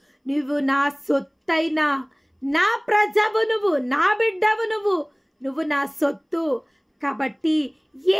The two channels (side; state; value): both; identical; correlation 1.00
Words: నువ్వు నా సొత్తైన నా ప్రజవు, నువ్వు నా బిడ్డవు, నువ్వు నా సొత్తు. కాబట్టి